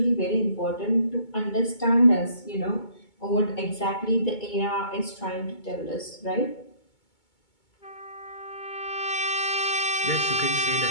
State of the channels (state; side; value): late; right; 2.2 ms